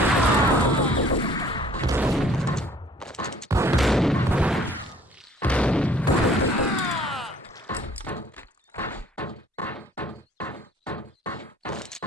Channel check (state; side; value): normal; both; correlation 0.56